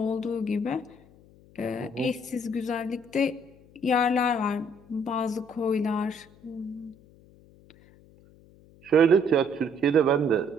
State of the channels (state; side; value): noise; left; hum, 26 dB below the sound